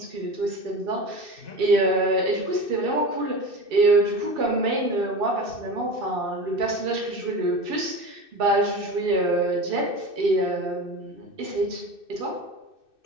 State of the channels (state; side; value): late; left; 2.6 ms